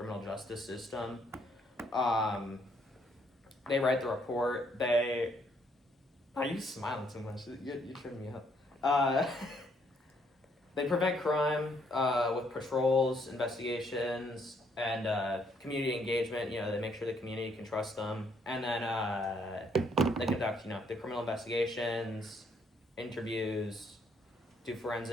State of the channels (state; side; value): normal; both; correlation 0.69